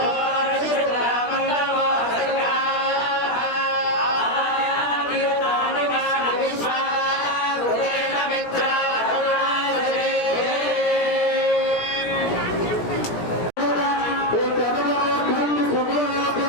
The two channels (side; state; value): right; late; 17 ms